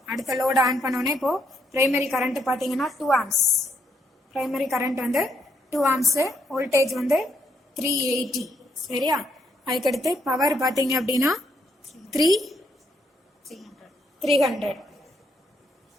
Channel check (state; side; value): normal; both; correlation 0.75